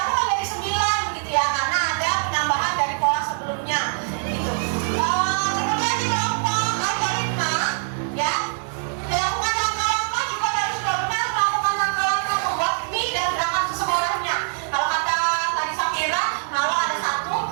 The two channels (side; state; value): left; silent; 56 dB below the other